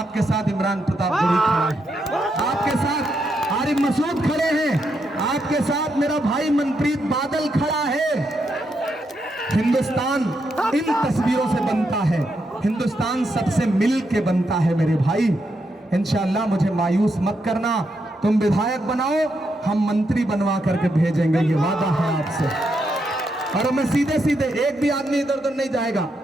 साथ इमरान प्रताप गोरी खड़ा है, आपके साथ आरिफ मसूद खड़े हैं, आपके साथ मेरा भाई मनप्रीत बादल खड़ा है। हिंदुस्तान इन तस्वीरों से बनता है, हिंदुस्तान सबसे मिल के बनता है मेरे भाई। इंशाअल्लाह मुझे मायूस मत करना, तुम विधायक बनाओ, हम मंत्री बनवा करके भेजेंगे, ये वादा है आपसे। और मैं सीधे सीधे, एक भी आदमी इधर उधर नहीं जाएगा।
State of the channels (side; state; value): both; normal; correlation 0.81